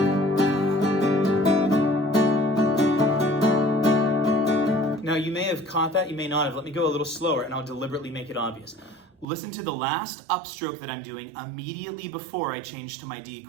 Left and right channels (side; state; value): left; drops out; at 9.2 s